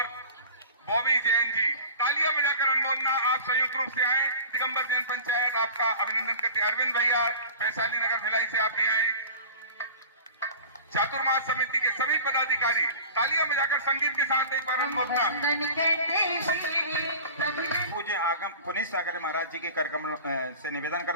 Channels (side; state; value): both; inverted; correlation -0.39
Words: बॉबी जैन जी, तालियां बजाकर अनुमोदना। आप संयुक्त रूप से आए। दिगंबर जैन पंचायत आपका अभिनंदन करते। अरविंद भैया वैशाली नगर भिलाई से आप भी आए। चातुर्मास समिति के सभी पदाधिकारी तालियां बजाकर संगीत के साथ एक बार अनुमोदना। पूज्य आगम पुनीत सागर महाराज जी के कार्यक्रम से निवेदन